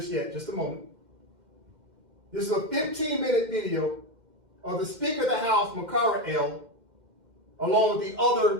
Just a moment. This is a 15-minute video of the Speaker of the House, Makara L., along with the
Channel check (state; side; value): late; left; 2.1 ms